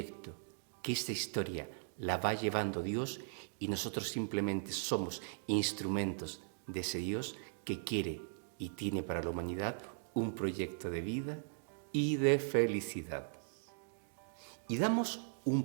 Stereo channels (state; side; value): silent; left; digital silence